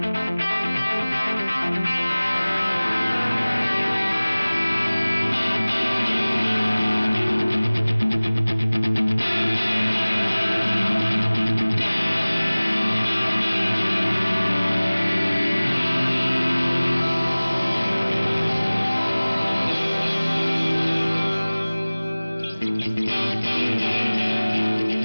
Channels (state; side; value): inverted; both; correlation -0.99